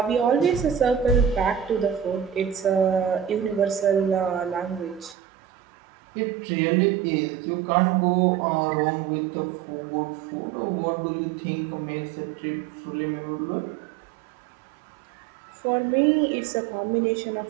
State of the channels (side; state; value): left; drops out; at 5.2 s